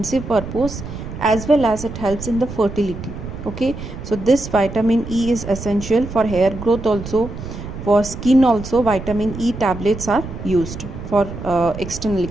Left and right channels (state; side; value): noise; right; rumble, 10 dB below the sound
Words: purpose, as well as it helps in the fertility. Okay, so this vitamin E is essential for hair growth also. For skin also, vitamin E tablets are used. For externally,